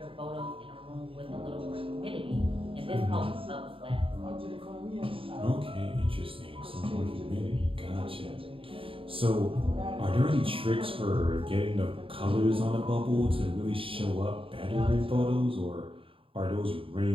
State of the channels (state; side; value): late; left; 0.26 ms